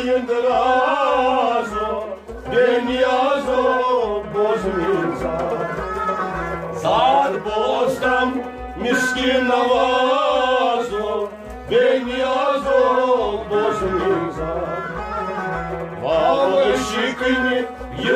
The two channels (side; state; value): both; identical; correlation 1.00